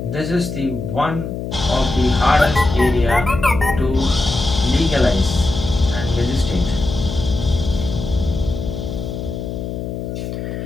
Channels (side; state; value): left; noise; hum, 6 dB below the sound